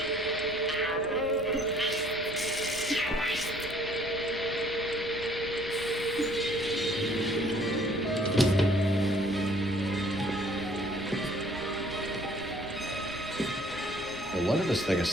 No wonder this thing is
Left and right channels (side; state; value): left; noise; rumble, 18 dB below the sound